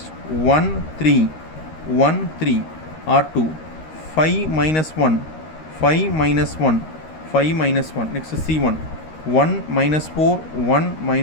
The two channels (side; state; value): right; late; 13 ms